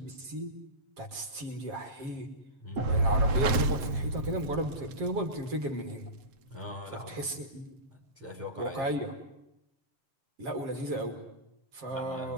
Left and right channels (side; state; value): left; late; 7.3 ms